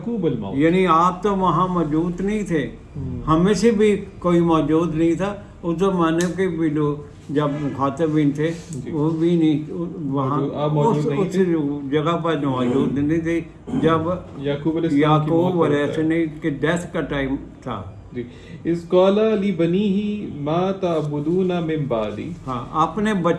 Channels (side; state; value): both; identical; correlation 1.00